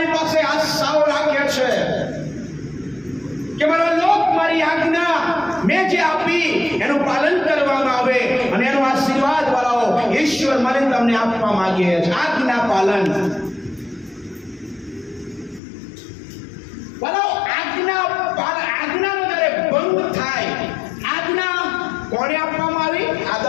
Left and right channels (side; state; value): right; drops out; at 15.6 s